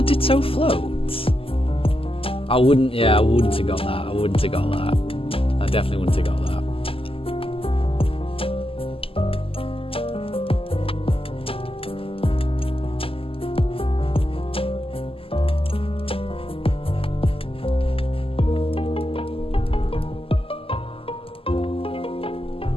Ditto float? I wouldn't have got that. I definitely wouldn't have got that.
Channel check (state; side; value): late; right; 0.26 ms